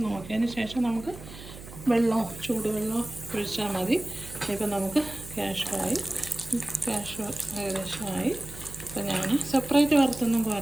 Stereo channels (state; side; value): noise; right; hum, 15 dB below the sound